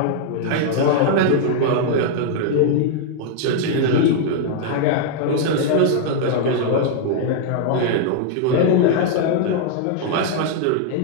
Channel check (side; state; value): both; different; correlation 0.00